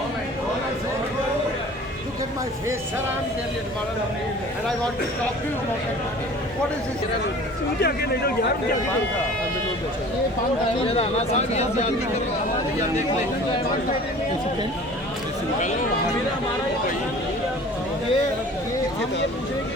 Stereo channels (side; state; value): both; normal; correlation 0.45